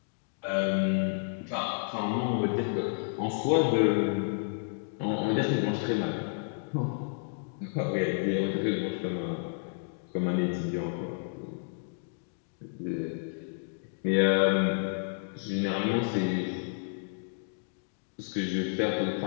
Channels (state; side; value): silent; right; digital silence